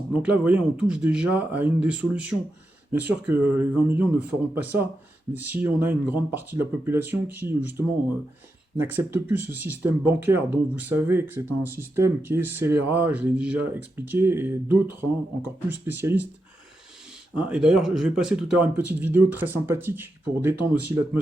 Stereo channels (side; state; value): both; normal; correlation 0.87